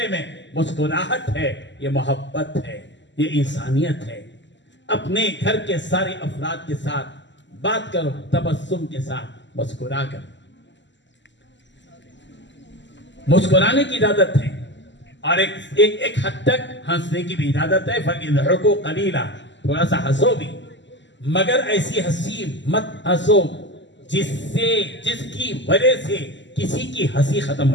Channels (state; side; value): late; right; 0.53 ms